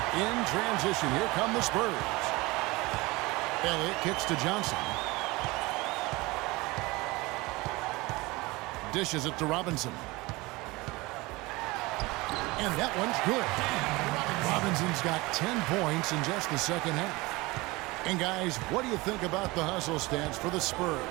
In transition, here come the Spurs. Elliott kicks to Johnson. Dishes it to Robinson. And that one's good. Robinson's got 10 points in just the second half. And guys, what do you think about the hustle stance for the Spurs?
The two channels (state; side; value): quieter; left; 22.5 dB